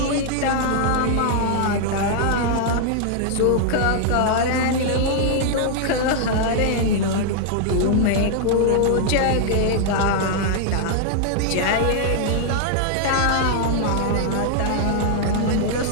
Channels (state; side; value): different; both; correlation -0.01